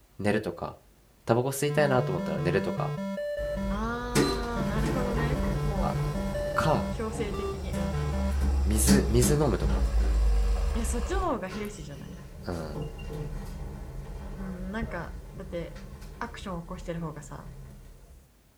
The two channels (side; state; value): both; identical; correlation 1.00